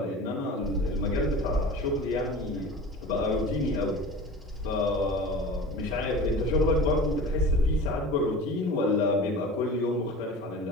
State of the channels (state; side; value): normal; both; correlation 0.36